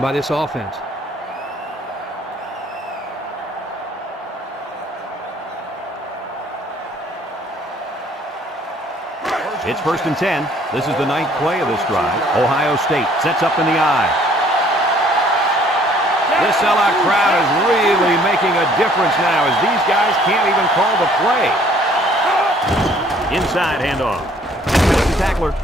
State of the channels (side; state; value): both; normal; correlation 0.59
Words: by this offense. It's 1st and 10. This is the 9th play of this drive. Ohio State sets up in the I. This sellout crowd is really making a difference now as these guys can't even call the play. Inside handoff. The tackler,